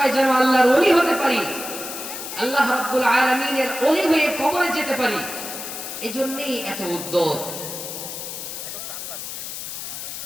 যেন আল্লাহর ওলি হতে পারি, আল্লাহ রাব্বুল আলামিনের ওলি হয়ে কবরে যেতে পারি। এজন্যই এত উদ্যোগ।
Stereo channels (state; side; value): noise; left; hiss, 8 dB below the sound